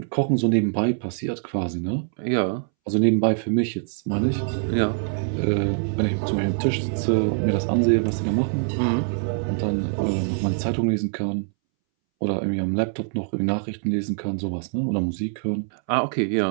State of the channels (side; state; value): left; silent; 63 dB below the other